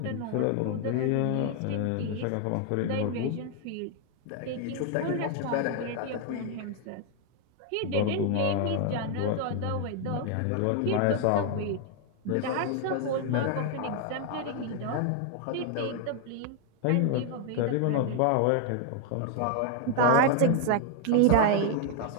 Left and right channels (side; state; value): both; different; correlation 0.00